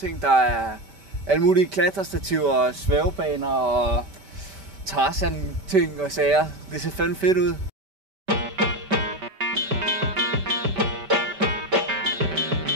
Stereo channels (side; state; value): left; late; 5.2 ms